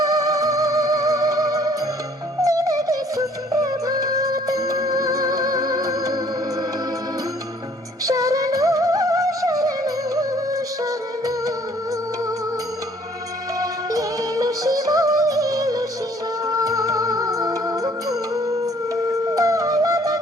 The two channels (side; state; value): both; normal; correlation 0.59